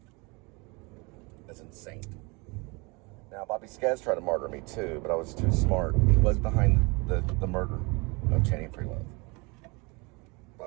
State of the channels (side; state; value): left; quieter; 28.0 dB